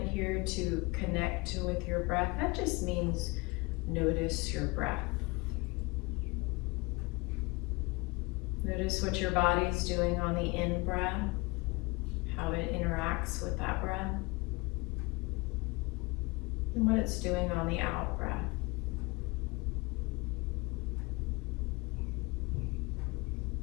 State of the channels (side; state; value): right; quieter; 25.7 dB